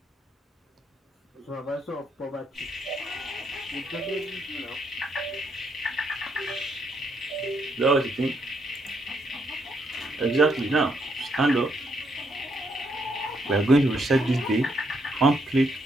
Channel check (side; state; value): both; normal; correlation 0.75